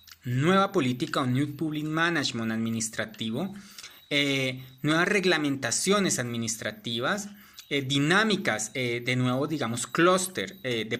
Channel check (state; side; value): identical; both; correlation 1.00